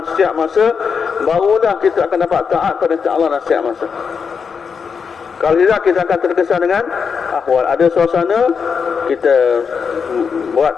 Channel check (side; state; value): right; quieter; 6.0 dB